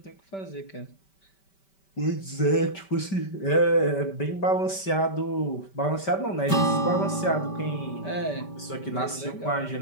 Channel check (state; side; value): late; right; 5.2 ms